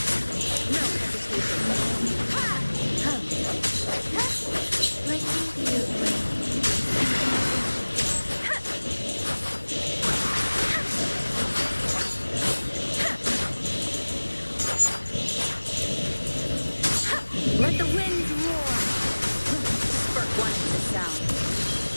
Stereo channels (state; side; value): inverted; both; correlation -1.00